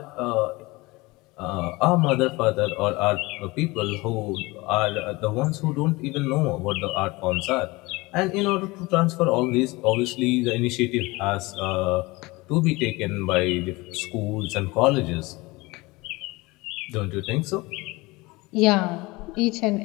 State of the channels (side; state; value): right; quieter; 22.8 dB